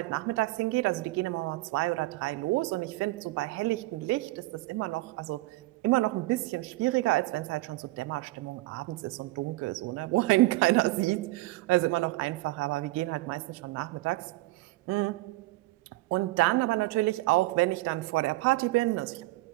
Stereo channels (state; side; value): quieter; left; 20.2 dB